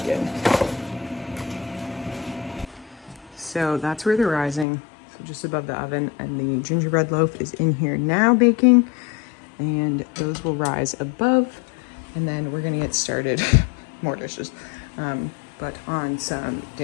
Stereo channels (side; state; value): right; drops out; at 4.7 s